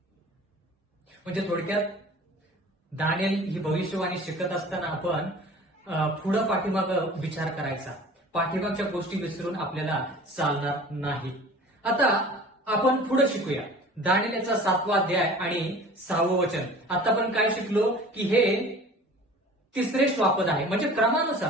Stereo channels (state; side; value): normal; both; correlation 0.43